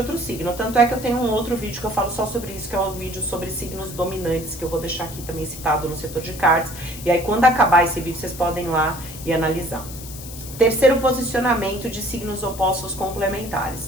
signo. Tanto é que eu tenho um outro vídeo que eu falo só sobre isso, que é um vídeo sobre signos dominantes, que eu vou deixar aqui também citado no setor de cards. E aí, quando acabar esse vídeo, vocês podem ir lá e analisar. Terceiro posicionamento de signos opostos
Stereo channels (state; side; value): noise; left; hiss, 13 dB below the sound